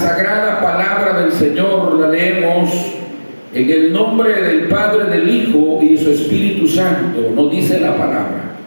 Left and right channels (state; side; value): inverted; both; correlation -1.00